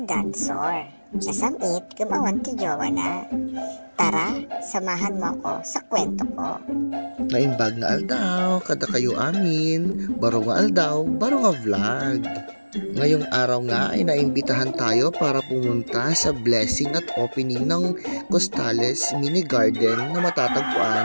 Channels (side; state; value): both; inverted; correlation -1.00